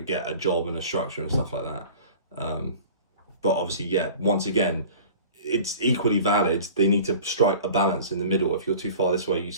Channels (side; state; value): both; inverted; correlation -0.42